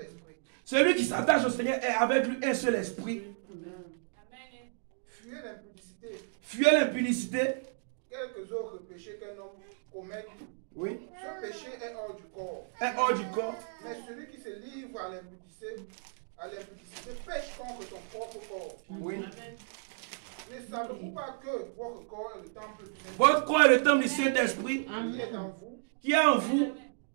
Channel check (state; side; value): silent; left; digital silence